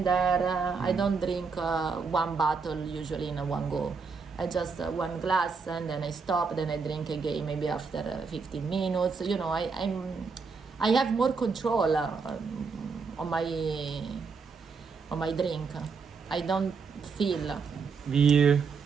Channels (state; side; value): quieter; left; 5.1 dB